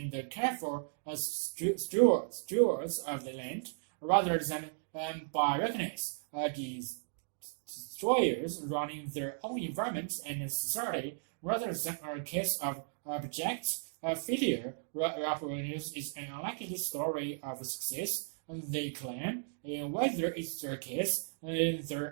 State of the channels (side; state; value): left; silent; digital silence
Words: careful stewards of the land, rather than by reckless destroyers running their own environment and society, rather than a case of abject failure. News is an unlikely story of success, they claim. And whether it's their case,